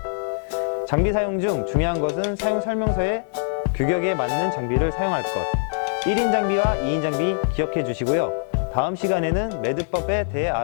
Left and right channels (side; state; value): right; silent; 61 dB below the other